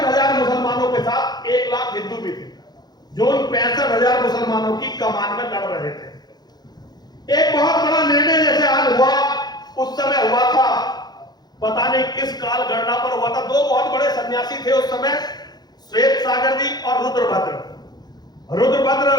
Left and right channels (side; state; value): right; late; 0.20 ms